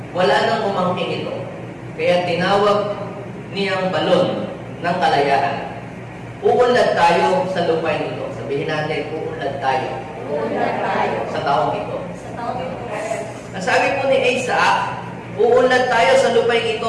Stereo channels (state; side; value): identical; both; correlation 1.00